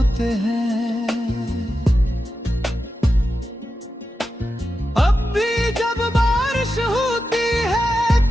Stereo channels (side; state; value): both; normal; correlation 0.90